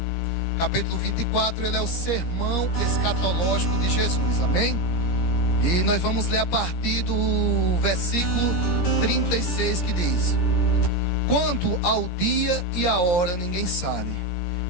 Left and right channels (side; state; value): right; late; 17 ms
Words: capítulo 24, ele é o sermão escatológico de Jesus, amém? E nós vamos ler a partir do versículo 36, que diz: quanto ao dia e a hora ninguém sabe,